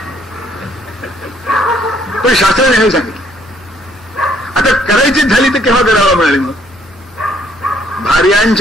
पण शास्त्राने नाही सांगितलं. आता करायचीच झाली तर केव्हा करावं म्हणाले. मग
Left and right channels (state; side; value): normal; both; correlation 0.65